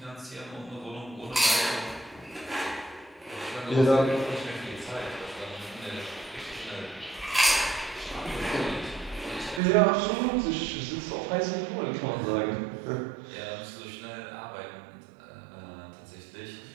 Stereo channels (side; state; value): left; drops out; at 9.6 s